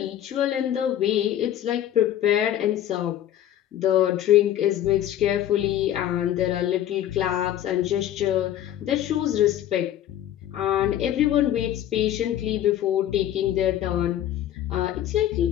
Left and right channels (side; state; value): right; quieter; 11.7 dB